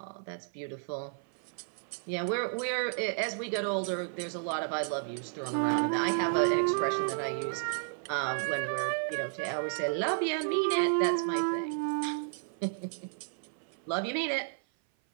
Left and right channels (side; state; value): left; silent; 56 dB below the other